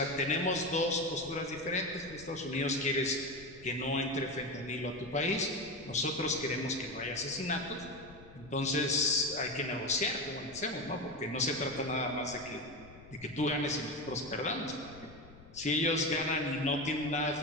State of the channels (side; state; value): left; noise; rumble, 20 dB below the sound